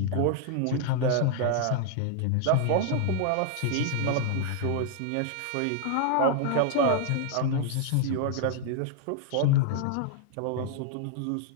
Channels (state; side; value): different; both; correlation 0.00